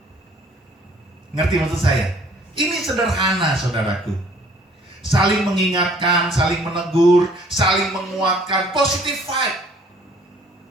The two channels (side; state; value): both; normal; correlation 0.57